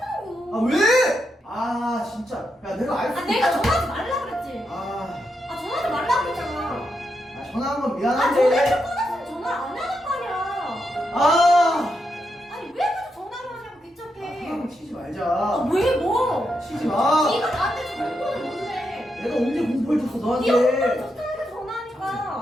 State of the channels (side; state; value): both; normal; correlation 0.84